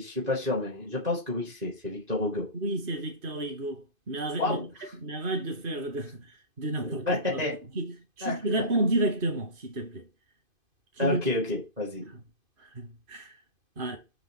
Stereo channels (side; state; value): left; late; 2.5 ms